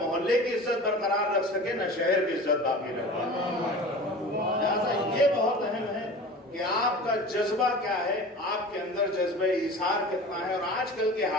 محلے کی عزت برقرار رکھ سکے نہ شہر کی عزت باقی رکھ سکے۔ لہٰذا یہ بہت اہم ہے کہ آپ کا جذبہ کیا ہے، آپ کے اندر جذبہ ایثار کتنا ہے۔ اور آج کل کے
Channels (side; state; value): both; normal; correlation 0.37